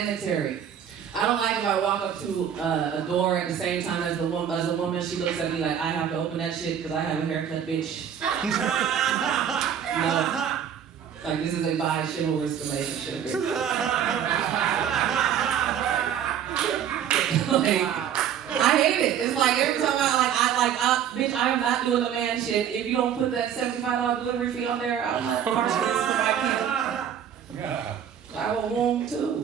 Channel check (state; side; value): quieter; left; 9.0 dB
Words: I don't like if I walk up to a door at the same time as a woman, she looks at me like I have to open that shit because I have a haircut, bitch. No. Like this is a bi-chivalrous relationship. Like, wow. I hate it. It's like every time bitch, I am not doing the man shit. If you don't put that $75 delivery fee on there, I'm not part of this. I have a womb